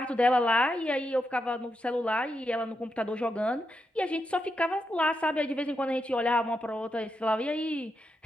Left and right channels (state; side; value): normal; both; correlation 0.84